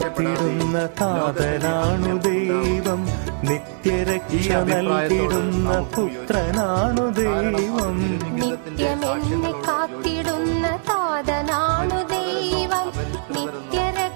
താതനാണു ദൈവം, നിത്യരക്ഷ നൽകിടുന്ന പുത്രനാണു ദൈവം, നിത്യമെന്നെ കാത്തിടുന്ന താതനാണു ദൈവം,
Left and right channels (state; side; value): silent; left; digital silence